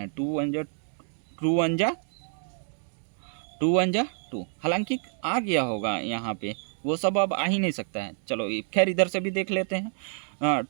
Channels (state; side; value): silent; left; 57 dB below the other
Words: हैं, 2 1 जा 2, हालांकि आ गया होगा यहाँ पे, वो सब अब आ ही नहीं सकता है। चलो खैर इधर से भी देख लेते हैं।